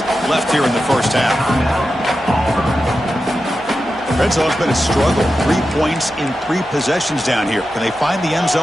left here in the first half. Red zone's been a struggle. 3 points in 3 possessions down here. Can they find the end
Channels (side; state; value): both; normal; correlation 0.91